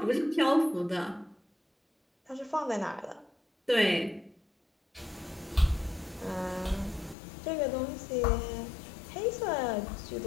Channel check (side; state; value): right; drops out; at 7.2 s